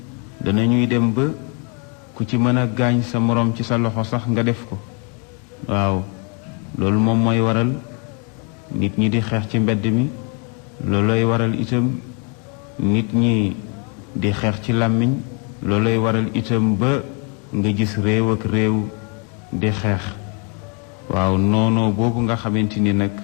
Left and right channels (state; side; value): quieter; right; 37.0 dB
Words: danañuy dem ba ku ci mën a gaañ sa morom ci sa loxo sax nga def ko. waaw loolu moom mooy waral nit ñi di xeex ci mbedd mi, loolooy waral itam nit ñi di xeex ci làmmiñ, loolooy waral itam ba nga gis réew ak réew di xeex. waaw noonoo boobu nga xamante ni nag